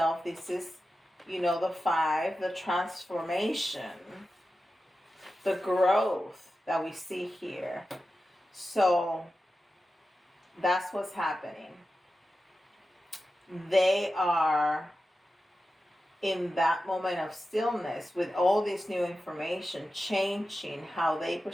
This is, the 5, the transformation, the growth that we see here. So that's what's happening. They are in that moment of stillness with all this new information, changing how they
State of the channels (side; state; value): both; normal; correlation 0.92